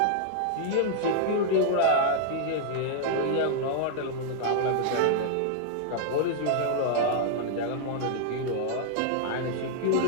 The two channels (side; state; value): both; different; correlation -0.01